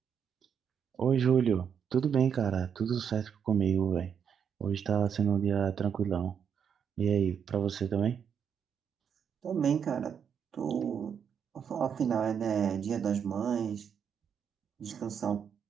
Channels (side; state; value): left; quieter; 7.5 dB